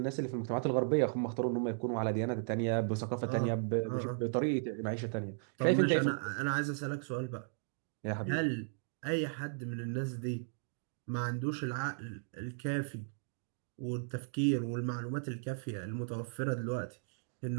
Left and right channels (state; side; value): silent; left; digital silence